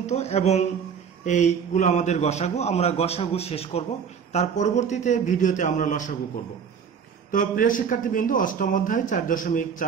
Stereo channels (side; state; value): left; quieter; 6.9 dB